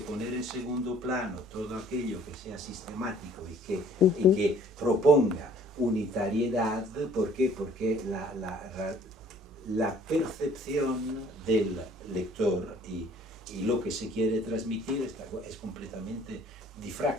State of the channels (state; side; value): normal; both; correlation 0.55